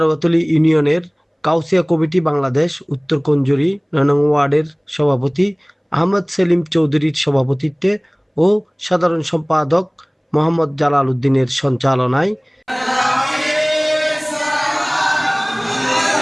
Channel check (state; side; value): identical; both; correlation 1.00